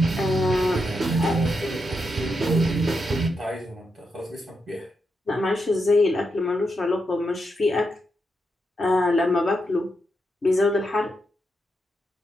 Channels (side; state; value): both; normal; correlation 0.84